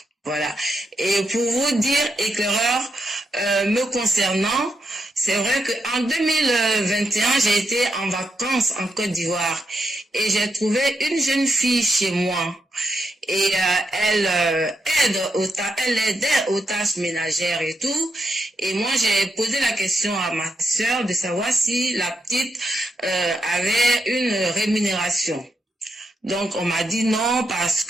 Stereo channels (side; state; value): both; normal; correlation 0.83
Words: Voilà. Et pour vous dire, éclaireur, me concernant, c'est vrai qu'en 2021, j'ai été en vacances en Côte d'Ivoire et j'ai trouvé une jeune fille chez moi. Et elle aidait aux tâches ménagères et tout. Et moi, j'ai posé la question à ma sœur de savoir si la petite avait une rémunération. Donc on m'a dit non parce